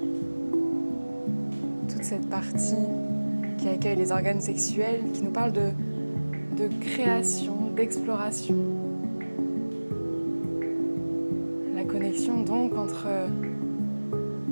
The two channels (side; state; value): both; inverted; correlation -1.00